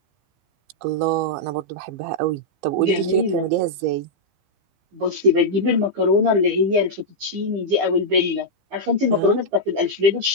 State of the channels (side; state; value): left; late; 15 ms